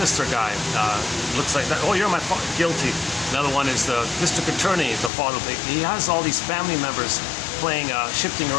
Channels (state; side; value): drops out; right; at 5.1 s